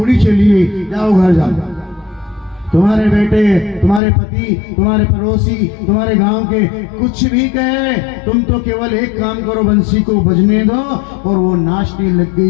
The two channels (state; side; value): drops out; right; at 4.0 s